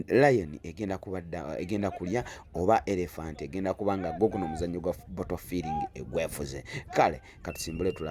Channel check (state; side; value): identical; both; correlation 1.00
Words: lion egenda kulya oba elephant egenda kubanga gwo guno omuzannyo gwa bottle feeling egwefuze. Kale katusimbule